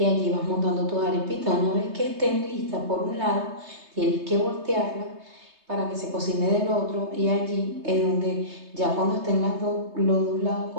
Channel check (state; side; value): late; left; 3.3 ms